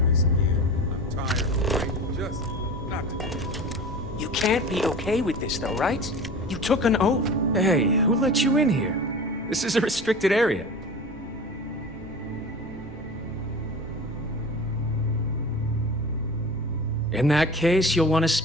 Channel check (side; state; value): both; normal; correlation 0.35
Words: You can't be okay with this, though, right? You took an oath. Hey, who let you in here? This is a restricted area. In that case, you'll want to